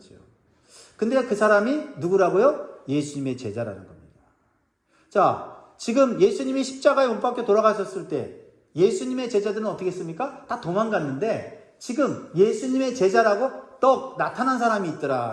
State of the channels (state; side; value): identical; both; correlation 1.00